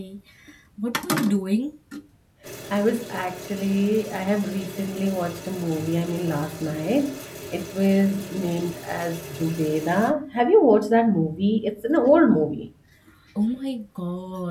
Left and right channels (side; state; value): both; identical; correlation 1.00